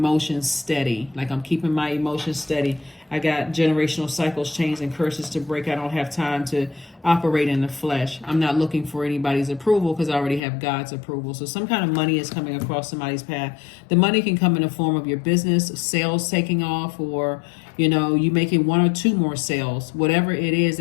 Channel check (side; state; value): right; drops out; at 10.4 s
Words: steady. Like, I'm keeping my emotions steady. I got generational cycles, chains, and curses to break. I don't have time to operate in the flesh. I'm not looking for anybody's approval because I already have God's approval. So some kind of money is coming across somebody's path. The money can come in the form of your business, sales taking off, or you making one or two more sales. Whatever it is